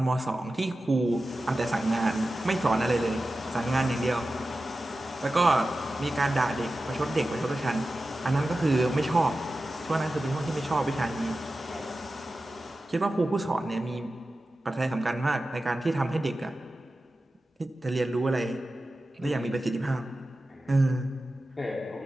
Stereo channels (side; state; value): both; normal; correlation 0.94